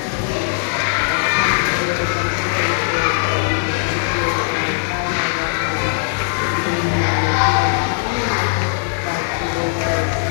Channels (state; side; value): silent; right; digital silence